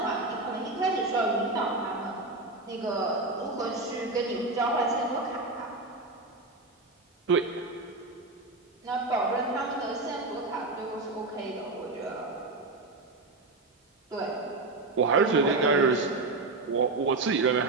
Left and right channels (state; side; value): quieter; left; 3.3 dB